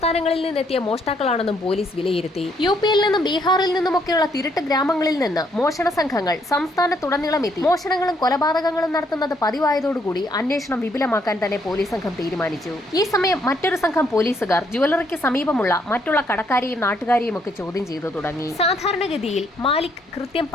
നിന്നെത്തിയ മോഷ്ടാക്കളാണെന്നും പോലീസ് വിലയിരുത്തി. UPയിൽ നിന്നും ബീഹാറിൽ നിന്നുമൊക്കെയുള്ള തിരുട്ട് ഗ്രാമങ്ങളിൽ നിന്ന് മോഷണ സംഘങ്ങൾ സംസ്ഥാനത്തുടനീളം എത്തി മോഷണങ്ങളും കൊലപാതകങ്ങളും നടത്തുന്നത് പതിവായതോടുകൂടി അന്വേഷണം വിപുലമാക്കാൻ തന്നെ പോലീസ് സംഘം തീരുമാനിച്ചു. ഈ സമയം മറ്റൊരു സംഘം പോലീസുകാർ ജുവലറിക്ക് സമീപമുള്ള മറ്റുള്ള കടക്കാരെയും നാട്ടുകാരെയും ഒക്കെ ചോദ്യം ചെയ്തു തുടങ്ങി. സാധാരണഗതിയിൽ മാലിക് കൃത്യം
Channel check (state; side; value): normal; both; correlation 0.71